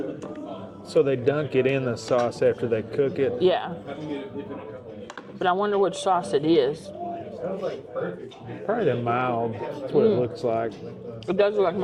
So they dunk it in the sauce after they cook it? Yeah. But I wonder which sauce it is. Probably the mild. That's what it looks like. It does look like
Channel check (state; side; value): identical; both; correlation 1.00